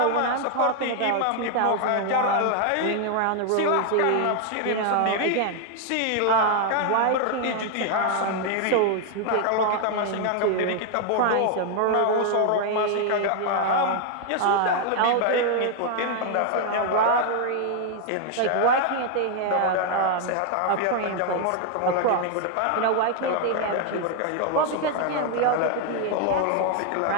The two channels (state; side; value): different; both; correlation 0.00